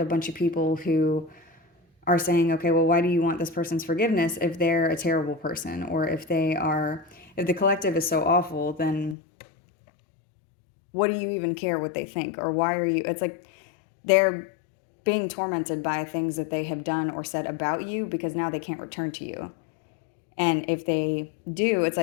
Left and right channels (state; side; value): drops out; right; at 9.2 s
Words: a bunch of people who are saying, okay, well, why do you want this person's forgiveness if they're a terrible person? Or if the collective is so awful, then what do you even care what they think? Or why are you, it's like they're being tormented by things that they have done or said about you because now they can't return to you. And if they do, it's